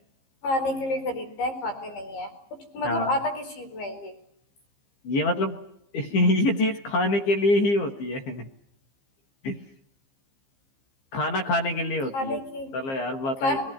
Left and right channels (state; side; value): late; right; 15 ms